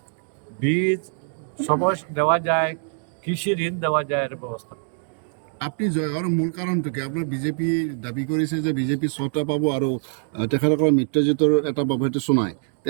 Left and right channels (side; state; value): left; silent; 63 dB below the other